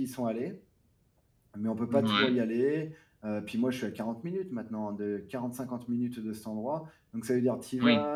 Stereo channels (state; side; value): identical; both; correlation 1.00